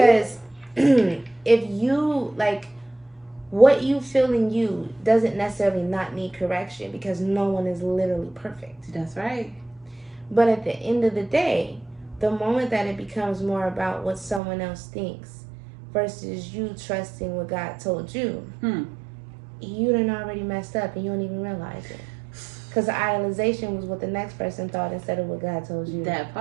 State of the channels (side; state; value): left; drops out; at 14.4 s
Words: if you, like, what you feel in you doesn't necessarily not need correction because no one is literally perfect. That's right. But at the end of the day, the moment that it becomes more about what someone else thinks versus you trusting what God told you, you done already messed up and you don't even realize it. Because the idolization was what the next person thought instead of what God told you. That